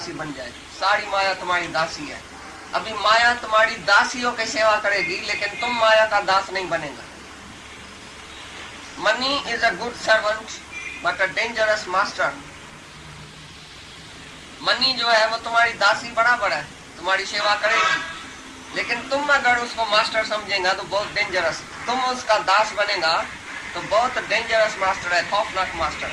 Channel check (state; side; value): identical; both; correlation 1.00